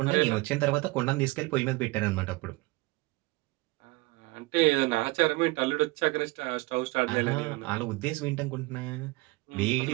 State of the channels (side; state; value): left; quieter; 23.2 dB